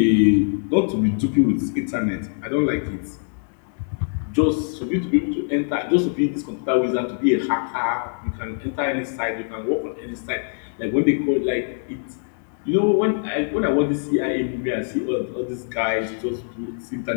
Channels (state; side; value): silent; right; digital silence